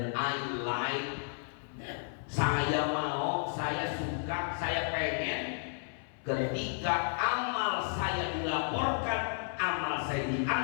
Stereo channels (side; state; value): right; silent; 56 dB below the other